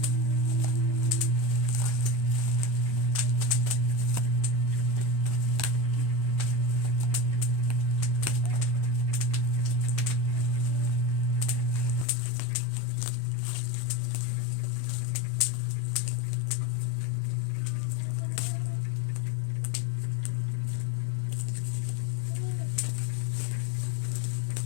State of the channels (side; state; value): right; drops out; at 12.1 s